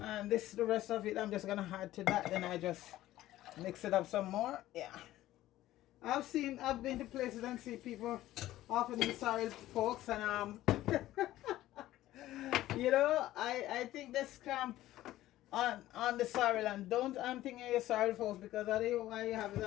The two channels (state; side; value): quieter; right; 14.9 dB